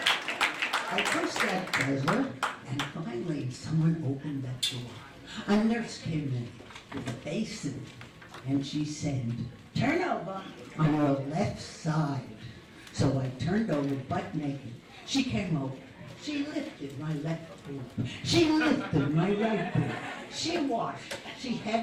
I pushed that buzzer, and finally someone opened that door. A nurse came in with a basin, and she said, turn over on your left side. So I turned over butt naked. She came over. She lifted my left boob. She lifted my right boob. She washed. She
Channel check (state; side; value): identical; both; correlation 1.00